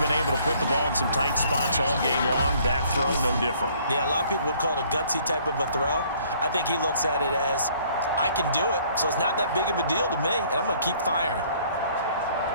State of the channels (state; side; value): inverted; both; correlation -0.60